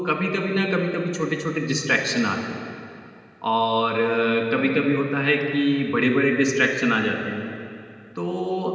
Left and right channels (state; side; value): identical; both; correlation 1.00